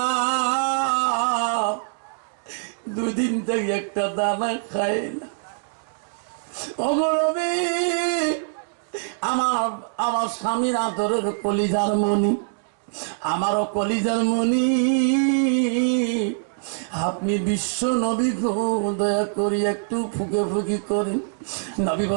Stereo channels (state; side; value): silent; left; digital silence